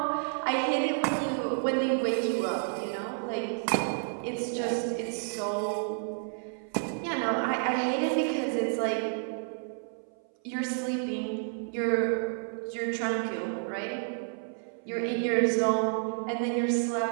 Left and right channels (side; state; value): left; silent; 57 dB below the other